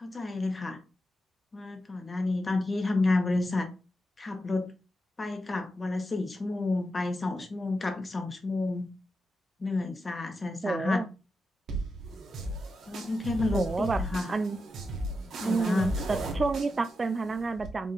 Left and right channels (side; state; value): both; normal; correlation 0.88